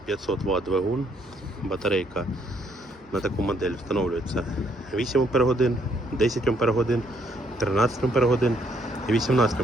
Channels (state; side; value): normal; both; correlation 0.70